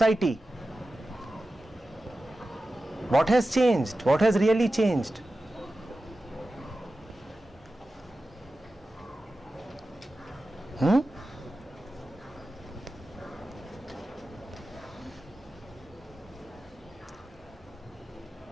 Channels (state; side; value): normal; both; correlation 0.94